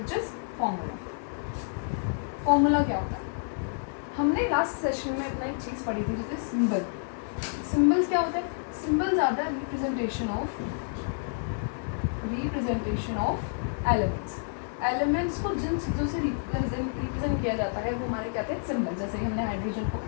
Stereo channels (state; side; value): silent; right; digital silence